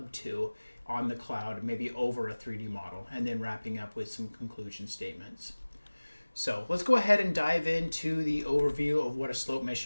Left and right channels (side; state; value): both; inverted; correlation -1.00